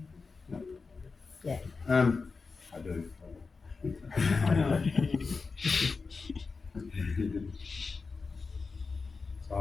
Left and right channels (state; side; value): quieter; right; 4.5 dB